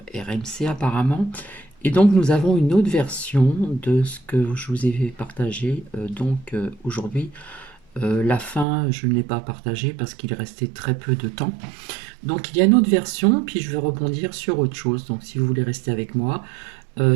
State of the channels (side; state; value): left; drops out; at 8.7 s